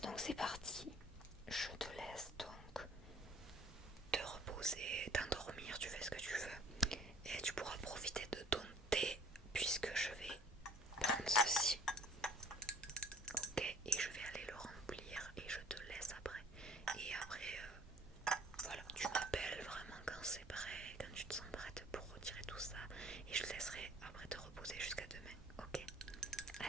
c'est parti. Je te laisse donc te reposer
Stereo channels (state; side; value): normal; both; correlation 0.53